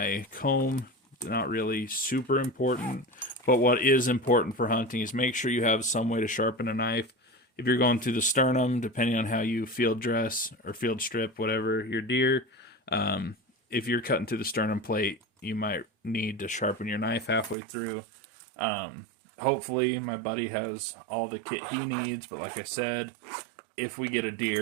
comb. Not really super important, but what is important for hunting is make sure you have some way to sharpen a knife. If you're going through the sternum, depending on how you field dress or field strip, whatever your deer, if you're cutting through the sternum plate, you might need to sharpen your knife halfway through. Hopefully my buddy has all the kit he needs, but like I said, if we get a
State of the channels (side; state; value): left; drops out; at 17.6 s